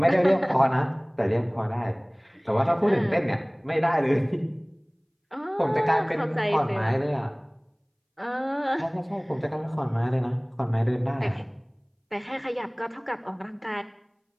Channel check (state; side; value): identical; both; correlation 1.00